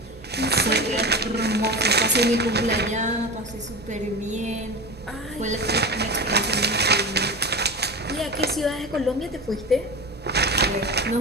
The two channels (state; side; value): normal; both; correlation 0.27